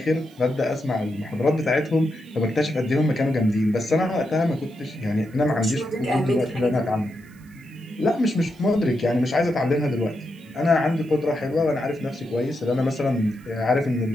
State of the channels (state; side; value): noise; right; hiss, 30 dB below the sound